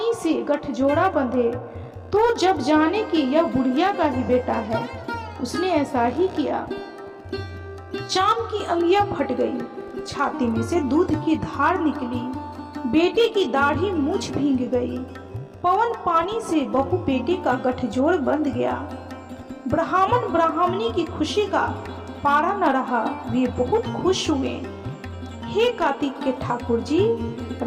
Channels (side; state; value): both; identical; correlation 1.00